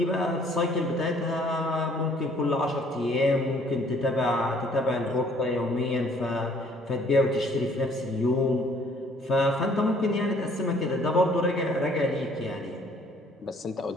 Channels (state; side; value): normal; both; correlation 0.60